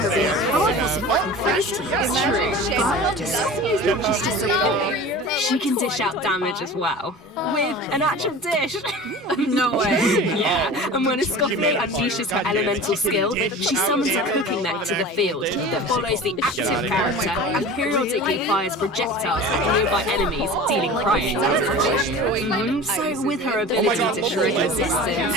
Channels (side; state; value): both; normal; correlation 0.36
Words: being a powerful support in freeze teams. It's true. But Escoffier's not just a support. She can dish out damage as well. With an actual dish. No way. Yeah, and when Escoffier unleashes her elemental skill, she summons a cooking mech to the field that follows the active character and periodically fires projectiles at nearby enemies, dealing cryo damage. So with her ability to shred